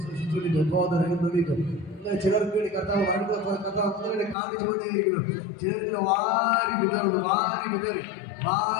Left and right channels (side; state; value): right; drops out; at 4.4 s